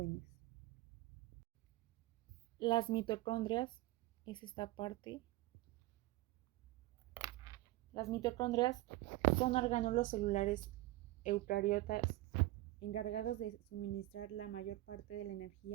Las mitocondrias es esta parte. Las mitocondrias son orgánulos celulares eucariotas encargados de suministrar la mayor parte de la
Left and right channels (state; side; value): quieter; left; 17.9 dB